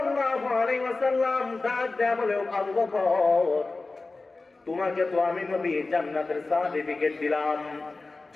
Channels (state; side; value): quieter; right; 3.5 dB